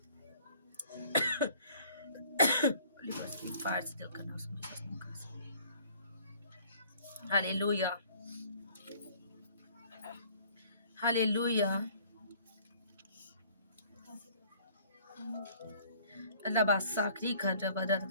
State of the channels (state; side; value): inverted; both; correlation -0.55